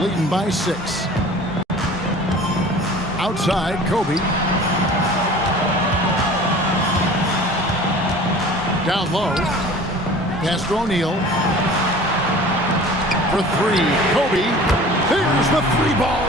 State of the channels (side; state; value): both; normal; correlation 0.44